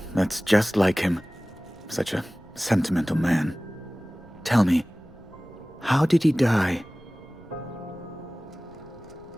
that's just like him. Such a sentimental man. Tell me, how did he die?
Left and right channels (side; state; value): right; noise; rumble, 25 dB below the sound